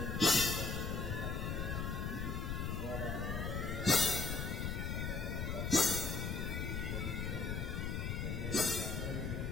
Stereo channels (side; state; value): left; noise; rumble, 1 dB below the sound